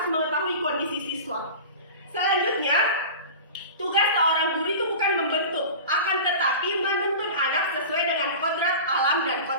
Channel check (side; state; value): both; inverted; correlation -0.33